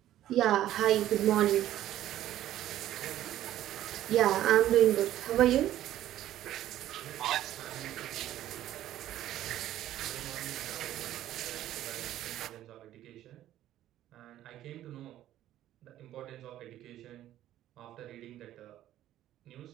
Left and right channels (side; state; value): left; quieter; 13.0 dB